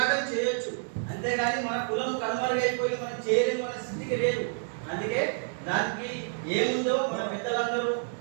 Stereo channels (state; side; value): silent; left; digital silence